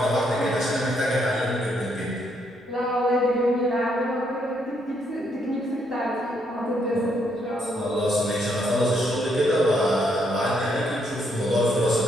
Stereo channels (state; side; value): normal; both; correlation 0.74